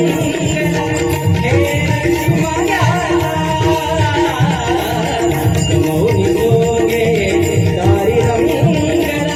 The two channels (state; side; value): identical; both; correlation 1.00